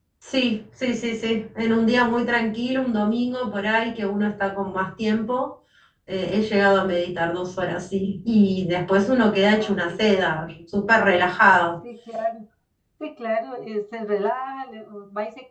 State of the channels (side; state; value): both; identical; correlation 1.00